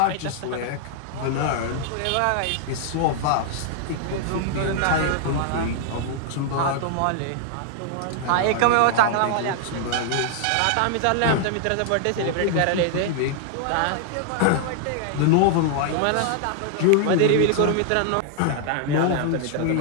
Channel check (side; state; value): both; different; correlation -0.01